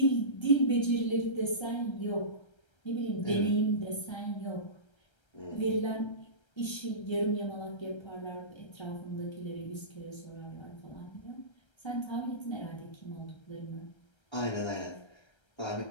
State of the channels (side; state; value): right; late; 1.3 ms